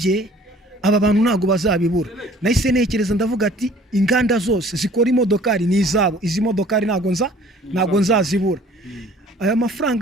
aba bantu ntago bazabibura. Nahise nekereza ndavuga ati inganda zose zikora imodokari ni izabo, izi modokari ntago nzazibura. Aya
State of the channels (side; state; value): both; normal; correlation 0.52